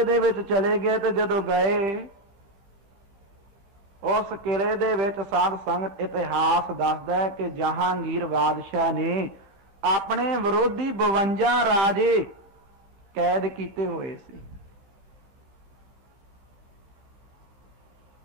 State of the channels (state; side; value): late; left; 16 ms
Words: ਦੇ ਵਿੱਚ ਚਲੇ ਗਏ ਤੇ ਜਦੋਂ ਗਏ ਉਸ ਕਿਲੇ ਦੇ ਵਿੱਚ ਸਾਧ ਸੰਗਤ ਇਤਿਹਾਸ ਦੱਸਦਾ ਹੈ ਕਿ ਜਹਾਂਗੀਰ ਬਾਦਸ਼ਾਹ ਨੇ ਆਪਣੇ ਵਿਰੋਧੀ 52 ਰਾਜੇ ਕੈਦ ਕੀਤੇ ਹੋਏ ਸੀ।